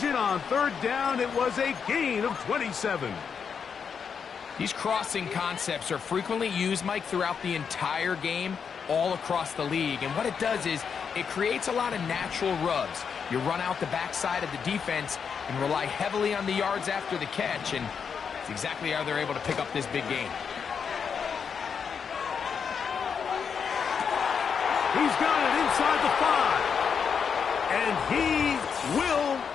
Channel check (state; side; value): quieter; right; 6.6 dB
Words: on 3rd down. It was a gain of 27. These crossing concepts are frequently used, Mike, throughout the entire game, all across the league. And what it does is it creates a lot of natural rubs. You run out the backside of the defense and rely heavily on the yards after the catch, and it's exactly how they're able to pick up this big game. He's got it inside the 5. And he will